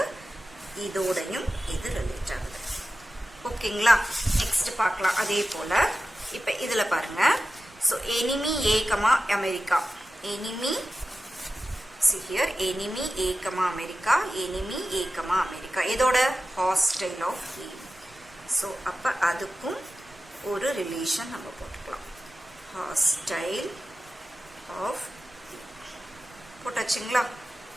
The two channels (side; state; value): both; normal; correlation 0.94